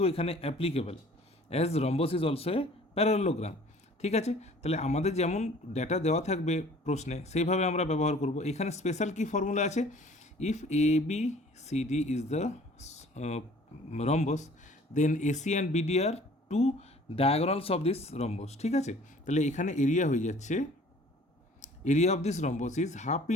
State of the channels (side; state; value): both; normal; correlation 0.51